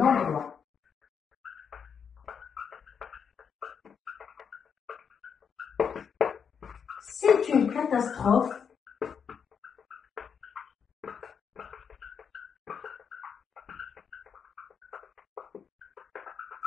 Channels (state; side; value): quieter; right; 6.9 dB